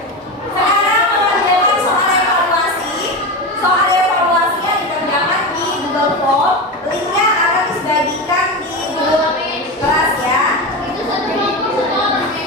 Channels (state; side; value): normal; both; correlation 0.21